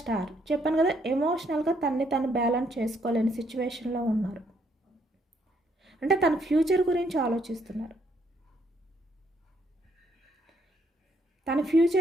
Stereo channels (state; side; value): normal; both; correlation 0.71